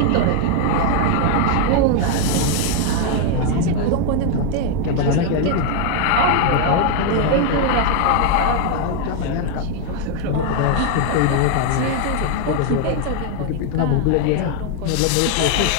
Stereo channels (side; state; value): both; different; correlation 0.00